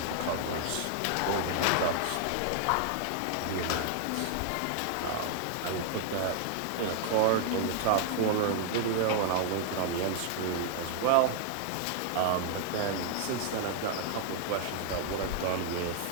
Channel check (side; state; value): both; different; correlation 0.00